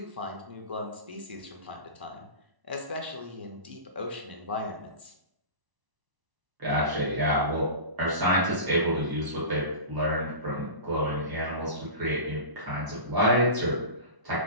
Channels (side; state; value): left; late; 1.0 ms